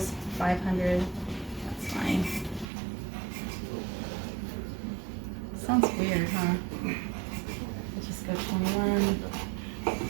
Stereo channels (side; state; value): left; drops out; at 2.7 s